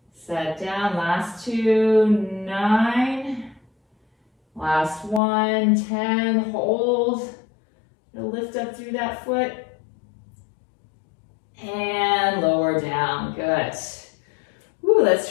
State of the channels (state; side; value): drops out; right; at 5.2 s